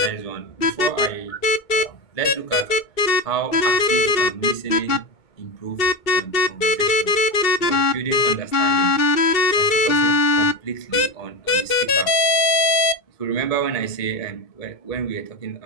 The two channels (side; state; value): right; late; 2.6 ms